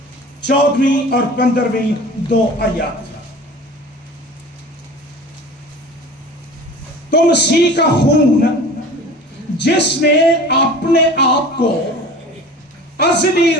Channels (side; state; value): both; normal; correlation 0.40